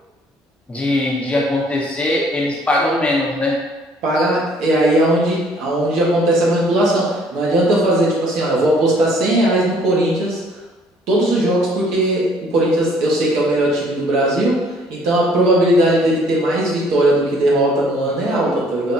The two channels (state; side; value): normal; both; correlation 0.60